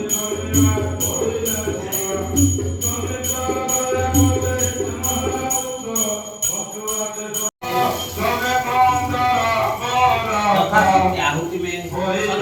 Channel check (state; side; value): identical; both; correlation 1.00